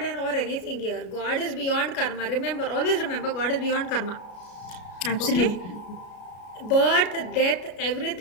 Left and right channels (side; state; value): right; late; 33 ms